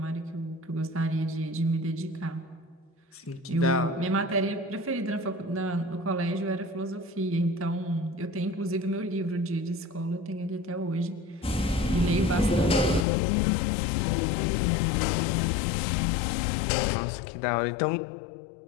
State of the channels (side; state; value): right; drops out; at 13.1 s